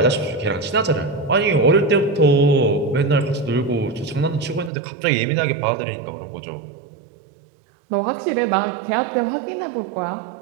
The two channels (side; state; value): left; drops out; at 4.7 s